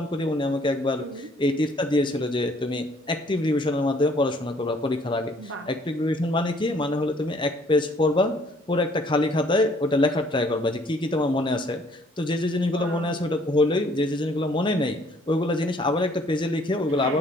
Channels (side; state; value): both; normal; correlation 0.61